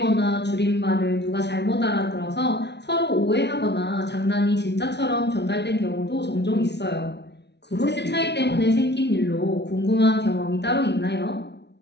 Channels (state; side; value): late; right; 0.50 ms